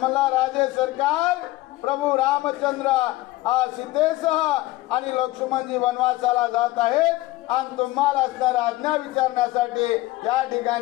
मला राजे सरकार प्रभू रामचंद्र सीतेसह आणि लक्ष्मणजी वनवासाला जात आहेत आणि तुम्हाला असणारा आज्ञा विचारण्यासाठी या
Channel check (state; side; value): quieter; right; 18.1 dB